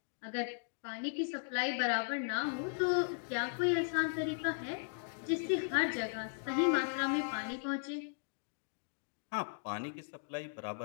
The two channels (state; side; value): silent; right; digital silence